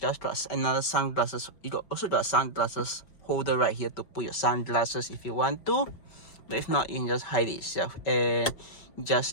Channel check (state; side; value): late; right; 5.1 ms